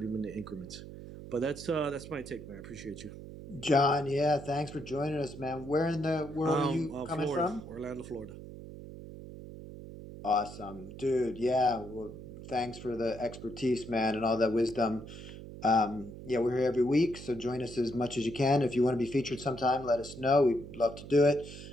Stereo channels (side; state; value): right; noise; hum, 13 dB below the sound